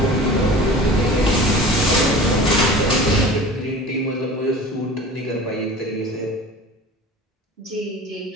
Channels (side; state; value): both; normal; correlation 0.39